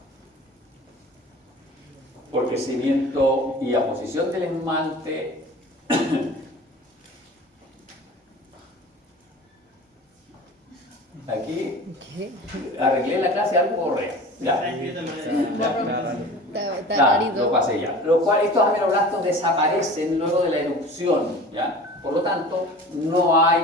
por crecimiento y aposición del esmalte, aquí arreglé la clase algo correcto. Ya, lo pasé ya. Lo cual, estos ameloblastos desaparecen luego de la erupción, ¿ya? Por lo tanto, no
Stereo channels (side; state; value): both; normal; correlation 0.39